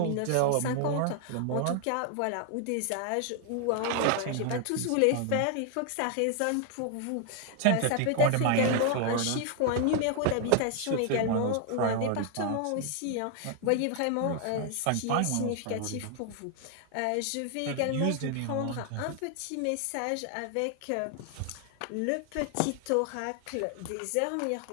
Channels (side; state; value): both; different; correlation 0.00